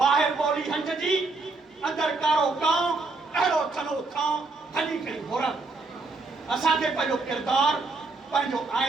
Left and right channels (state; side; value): quieter; left; 3.7 dB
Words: ॿोली हंज जी अंदरि कारो कांव, अहिड़ो थलो थांव हली खणी घोरा। असांखे पंहिंजो किरदारु, पंहिंजो